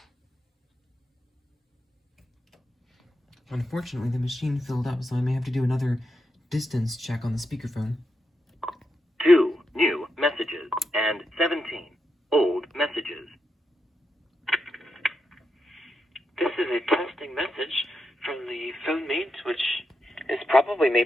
Unfortunately, the machine filled up, so I may have to do another distance check on the Speakerphone. 2 new messages and 17 old messages. This is a testing message from the PhoneMate, which is probably made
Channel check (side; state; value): both; normal; correlation 0.85